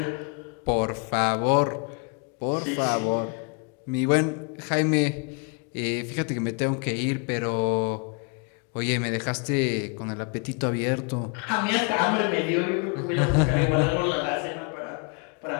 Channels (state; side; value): quieter; right; 35.1 dB